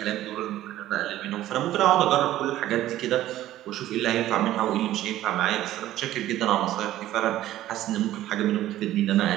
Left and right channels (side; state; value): left; quieter; 14.0 dB